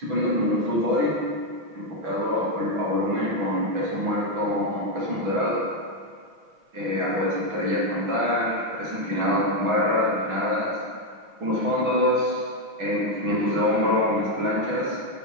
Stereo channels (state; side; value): late; left; 6.1 ms